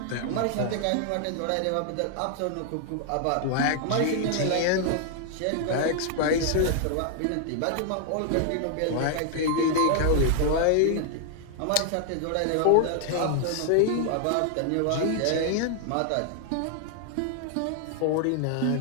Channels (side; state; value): both; different; correlation 0.00